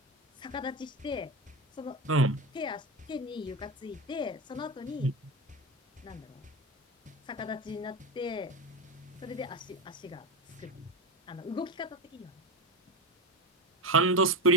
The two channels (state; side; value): normal; both; correlation 0.19